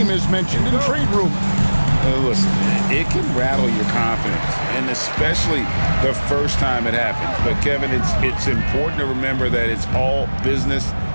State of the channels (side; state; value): both; inverted; correlation -1.00